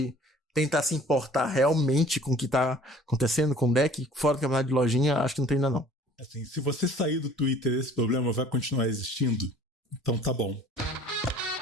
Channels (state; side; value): normal; both; correlation 0.51